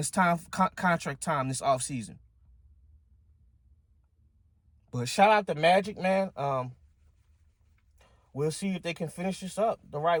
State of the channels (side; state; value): both; identical; correlation 1.00